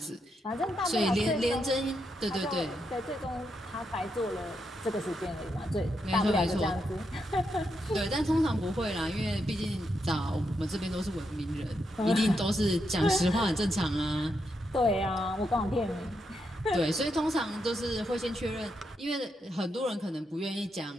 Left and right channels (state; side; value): normal; both; correlation 0.82